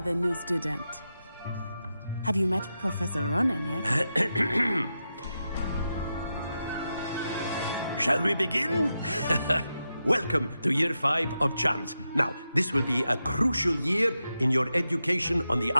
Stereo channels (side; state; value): both; inverted; correlation -0.88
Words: the new student. Have you met Professor Ronan yet? Shall we begin? Welcome to Year 5 of Charms. Now, this will be a crucial year in your education on the